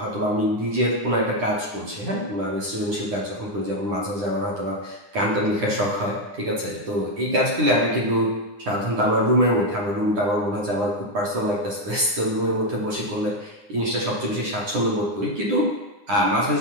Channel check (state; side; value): late; left; 9.8 ms